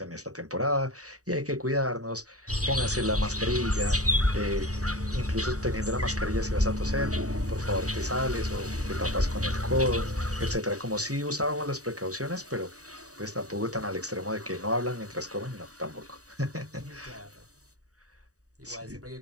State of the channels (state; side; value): late; left; 0.66 ms